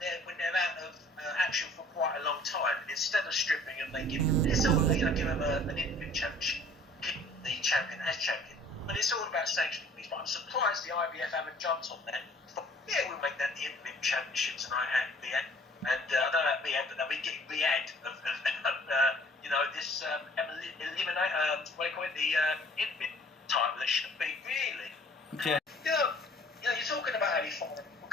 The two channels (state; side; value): normal; both; correlation 0.53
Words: when they're out of action for quite a long time, and instead of stripping them, they give them an intimate championship, keep the champion as champion. But it's all about sanctioning these. But I'm surprised the IBF haven't jumped on that. But, yeah, we'll make that the intimate championship tonight at Riyadh. And I don't know about Riyadh, but they'll be getting Riyadh of this eliminate, what do you call it, the intimate title. That should be really. Okay. You know, you're talking about Ali Foreman. What